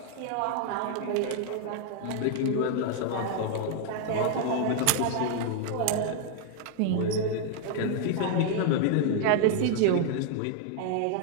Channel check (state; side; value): different; both; correlation 0.00